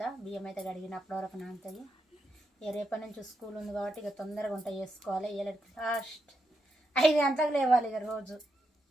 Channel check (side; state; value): both; normal; correlation 0.83